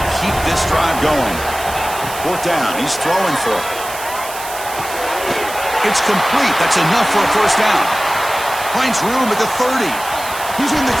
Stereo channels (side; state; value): right; noise; hiss, 11 dB below the sound